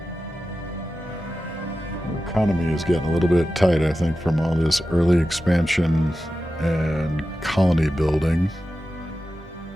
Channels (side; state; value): both; normal; correlation 0.93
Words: economy is getting a little bit tight, I think, from all this early expansion and colony building.